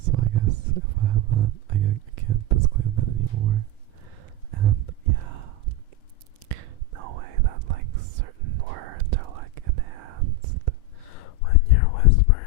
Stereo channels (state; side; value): late; right; 4.8 ms